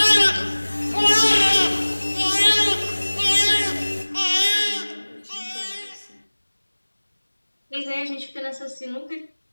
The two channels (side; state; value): both; inverted; correlation -1.00